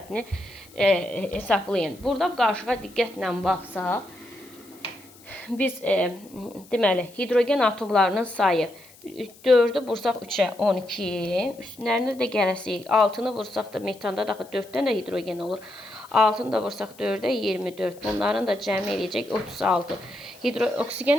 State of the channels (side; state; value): left; noise; hiss, 24 dB below the sound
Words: hesablayın. Burada qarışığa diqqətlə baxsaq, biz deməli hidrogen atomlarının sayı 4'ü vursaq 3'ə 12, üstünlərində də gələsik 6'nı vursaq da metanda da 4'dən də hidrogen olur. 6'nı da vursaq 4'ə 24. Bunların da cəmi eləyəcək 36.